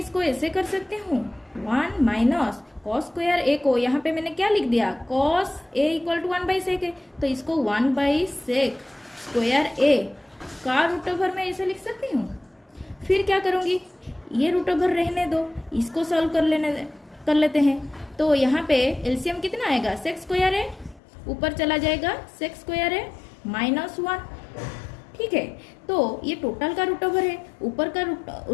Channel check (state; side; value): drops out; right; at 21.0 s